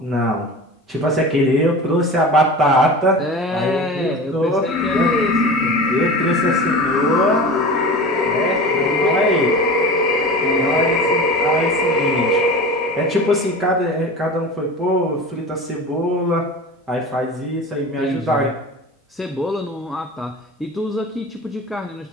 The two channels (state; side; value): normal; both; correlation 0.33